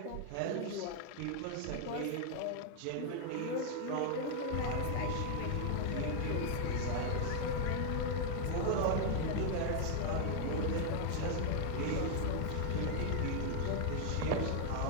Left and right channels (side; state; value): both; different; correlation 0.00